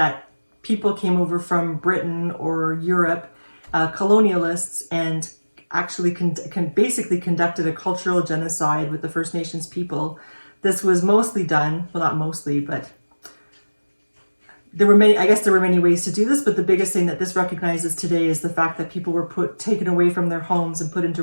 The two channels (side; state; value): both; inverted; correlation -1.00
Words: people came over from Britain or Europe, colonialists, and actually basically conducted a cultural genocide with the First Nations people. This was mostly done, well, not mostly, but there were many ways to do this, but the biggest thing that this recognizes today is the fact that people were taken away from their homes and put into